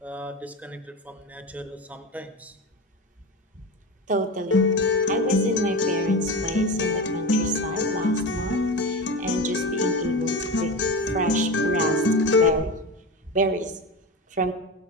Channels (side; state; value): both; normal; correlation 0.24